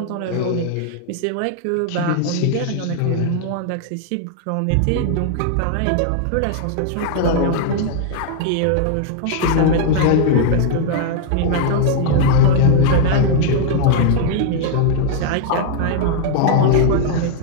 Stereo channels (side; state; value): both; different; correlation 0.00